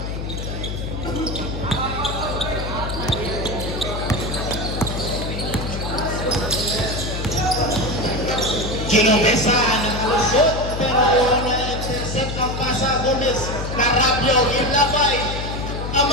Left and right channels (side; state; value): left; noise; hum, 5 dB below the sound